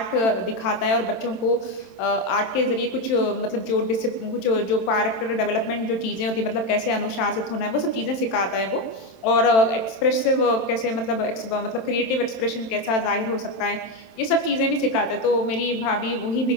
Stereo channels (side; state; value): right; late; 27 ms